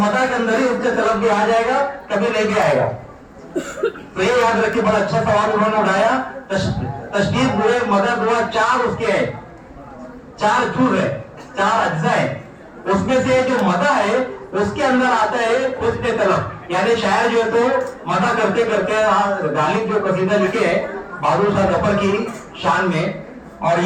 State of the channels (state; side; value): identical; both; correlation 1.00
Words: के अंदर ही उसके तरफ भी आ जाएगा, कभी नहीं भी आएगा। तो ये याद रखिए, बड़ा अच्छा सवाल उन्होंने उठाया। तशबीह, बुग़्ज़, मदा, दुआ, चार उसके हैं, चार जुज़ है, चार अज्जा है। उसमें से जो मदा है उसके अंदर आता है हुस्न तलब, यानी शायर जो है तो मदा करते करते गालिब जो कसीदा लिखे है बहादुर शाह जफर की शान में। और